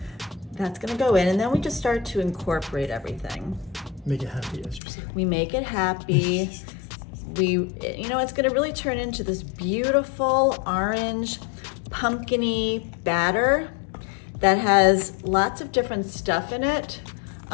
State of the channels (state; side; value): drops out; right; at 4.8 s